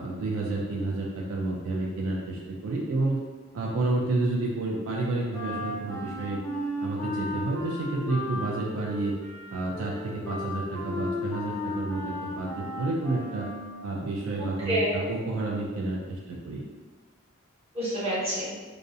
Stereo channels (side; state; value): both; normal; correlation 0.58